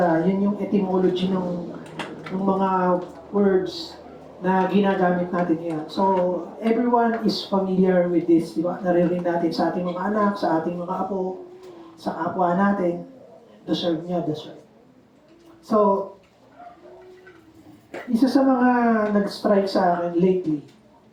yun yung etymology ng mga words na ginagamit natin ngayon. So, everyone is familiar with this, di ba? Naririnig natin sa ating mga anak, sa ating mga apo, sa kapwa natin, deserve niya, deserve. So, isa sa mga nag-strike sa akin lately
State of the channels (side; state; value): both; identical; correlation 1.00